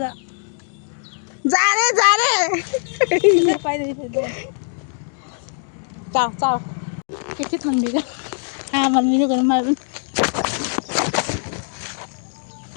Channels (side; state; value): right; silent; digital silence